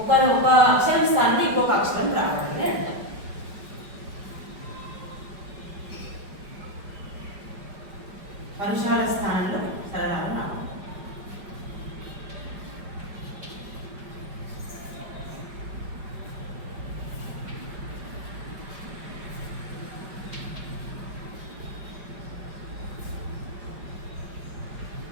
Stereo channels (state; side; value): late; left; 5.1 ms